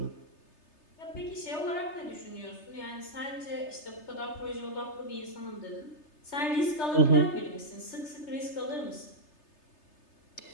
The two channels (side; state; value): right; late; 3.3 ms